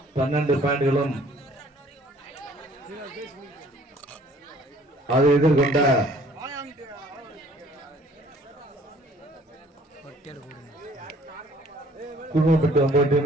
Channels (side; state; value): both; normal; correlation 0.57